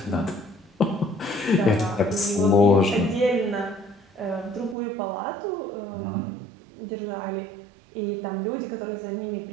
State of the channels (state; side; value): drops out; left; at 4.8 s